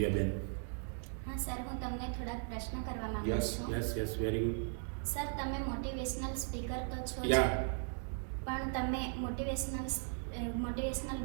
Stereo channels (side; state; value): left; silent; 53 dB below the other